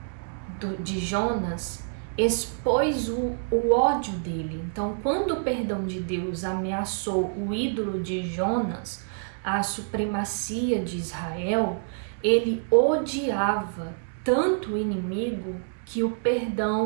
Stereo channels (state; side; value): silent; left; 60 dB below the other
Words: de Jonas expôs o ódio dele. Então, quando o perdão de Deus ameaçou o ídolo de Jonas, a supremacia de Israel, ele odiava tanto o inimigo que o